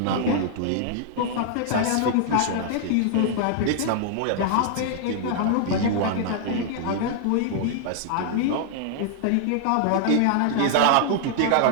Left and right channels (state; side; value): different; both; correlation 0.00